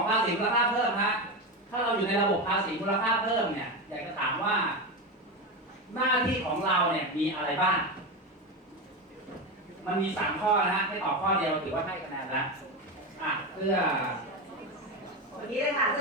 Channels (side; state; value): both; normal; correlation 0.17